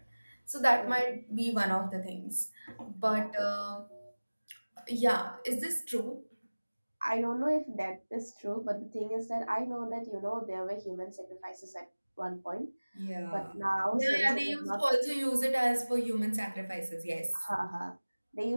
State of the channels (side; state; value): both; inverted; correlation -1.00